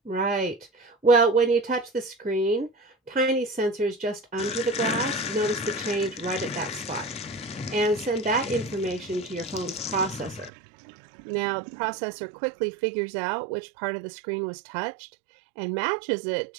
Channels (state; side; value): drops out; left; at 10.5 s